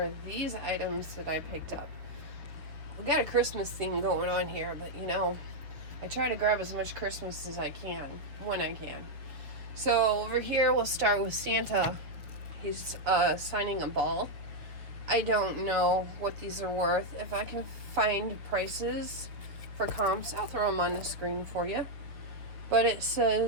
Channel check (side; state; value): left; late; 6.5 ms